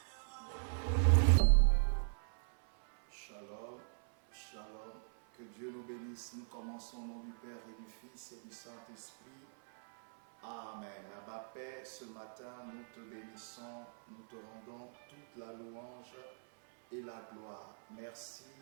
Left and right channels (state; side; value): silent; left; 51 dB below the other